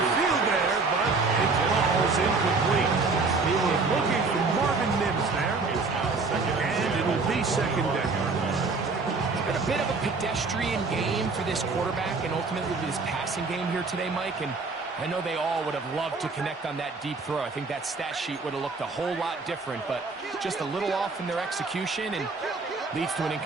field there, but it falls incomplete. He was looking for Marvin Mims there. And it'll be 2nd down. Been a bit of a pedestrian game for this quarterback and ultimately this passing game here today, Mike. And I know they all would have loved to connect on that deep throw. I think that stat sheet would have looked a whole lot different, but just a little off in their execution and leads to an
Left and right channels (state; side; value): quieter; left; 4.1 dB